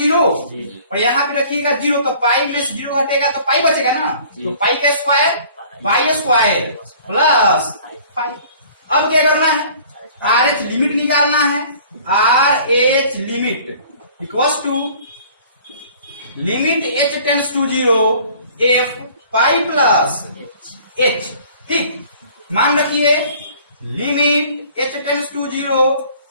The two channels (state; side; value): inverted; both; correlation -0.51